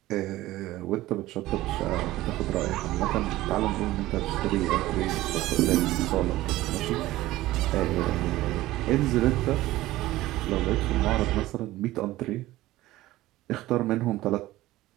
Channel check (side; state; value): left; quieter; 16.7 dB